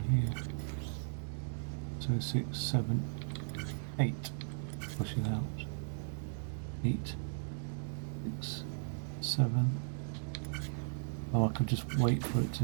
here. So 6, 7, 8. Push it out. 8, 6, 7. Oh, I could just wait for it to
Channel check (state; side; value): silent; left; 53 dB below the other